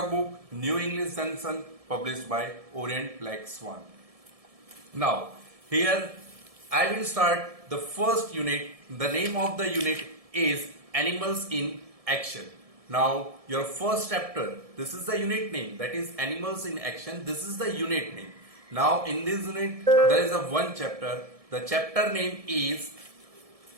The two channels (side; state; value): left; late; 1.7 ms